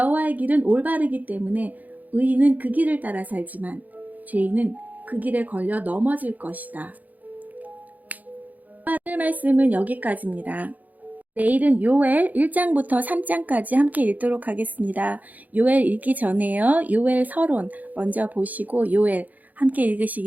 길은 올바르기 때문에 의인은 그 길을 따라 살지만 죄인은 그 길에 걸려 넘어질 것이다. 오늘 말씀은 여기까지입니다. 내일은 요엘 1장부터 3장까지 함께 읽도록 하겠습니다. 요엘 읽기 전에요. 요엘 서론 먼저 보시고 요엘 함께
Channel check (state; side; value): late; left; 0.080 ms